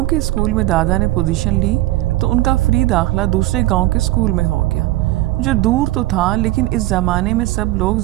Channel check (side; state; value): left; quieter; 17.1 dB